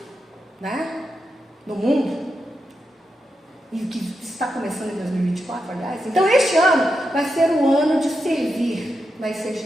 né? No mundo, e o que está começando em 2024, aliás. Então, este ano vai ser um ano de servir na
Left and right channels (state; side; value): normal; both; correlation 0.86